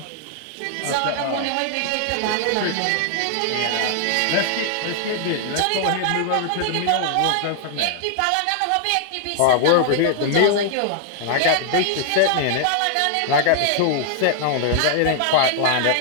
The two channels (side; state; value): both; different; correlation 0.00